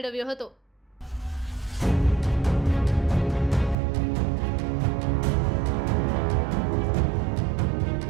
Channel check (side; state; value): left; drops out; at 3.8 s